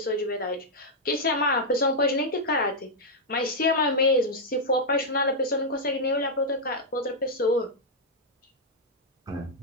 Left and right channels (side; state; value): both; normal; correlation -0.04